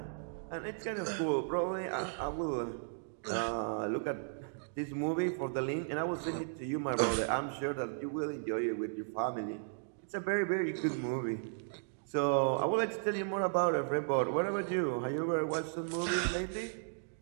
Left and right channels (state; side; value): silent; left; digital silence